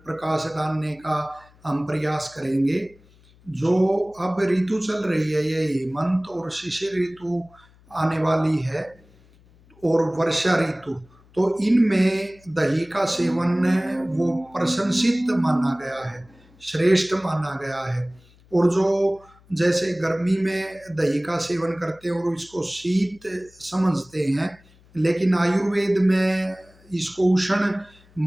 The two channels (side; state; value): left; noise; hum, 28 dB below the sound